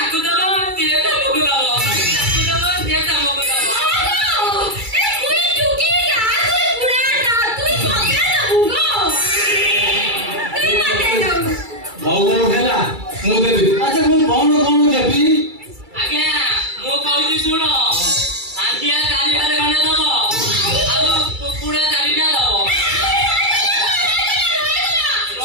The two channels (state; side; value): late; left; 2.3 ms